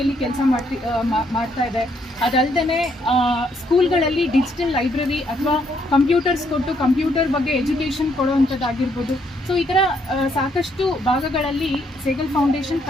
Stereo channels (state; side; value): normal; both; correlation 0.71